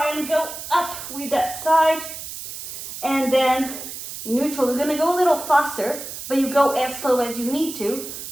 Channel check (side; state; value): right; noise; hiss, 10 dB below the sound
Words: and go up with that side. And then neutral. We're gonna go a little faster, but you go as slow as you need to